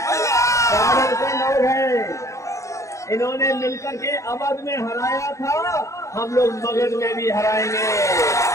बॉर्डर के लोग हैं, इन्होंने मिलकर के अवध में हराया था, हम लोग मगध में भी हराएंगे।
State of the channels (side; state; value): right; late; 0.15 ms